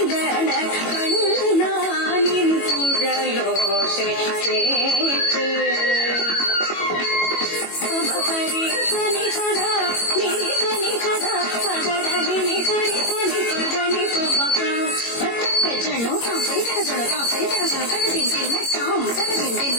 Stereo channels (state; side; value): late; right; 21 ms